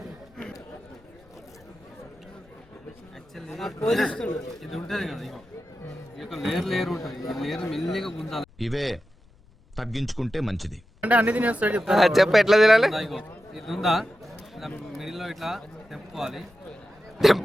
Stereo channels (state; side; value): noise; left; rumble, 28 dB below the sound